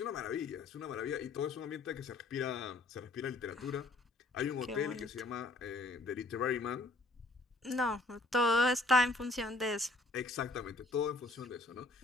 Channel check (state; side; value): quieter; right; 3.0 dB